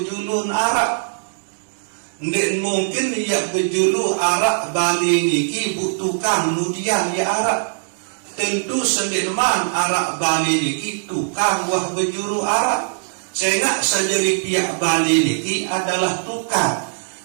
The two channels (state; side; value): silent; left; digital silence